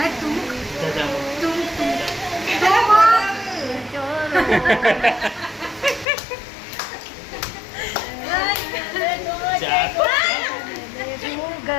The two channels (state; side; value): drops out; right; at 6.1 s